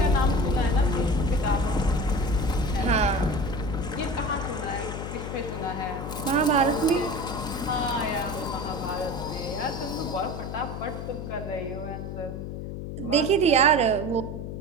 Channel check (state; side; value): noise; left; hum, 7 dB below the sound